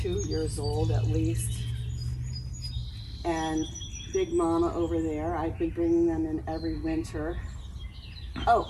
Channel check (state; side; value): identical; both; correlation 1.00